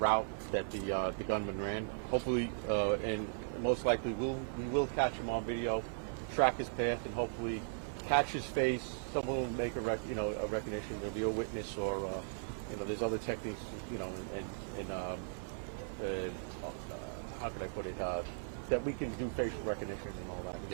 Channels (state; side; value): silent; left; 53 dB below the other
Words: that the gunman ran. Hopefully, and most likely, we will catch him on video, track his path, and hopefully catch his face. Someone will make a recognition. There'll be a witness, or there's other techniques, how can I put it? That we can do facial recognition.